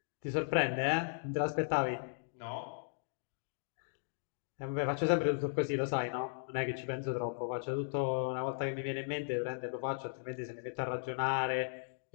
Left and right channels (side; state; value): right; silent; digital silence